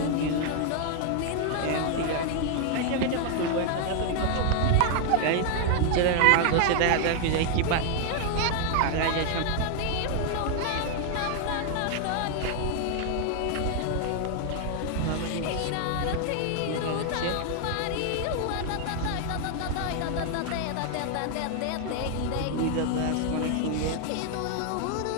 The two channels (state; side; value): different; both; correlation 0.00